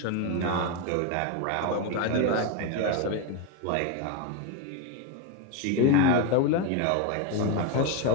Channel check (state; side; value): different; both; correlation 0.02